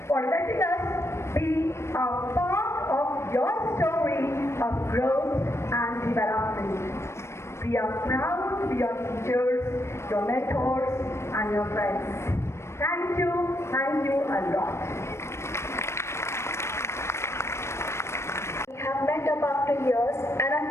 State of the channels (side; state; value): right; late; 0.13 ms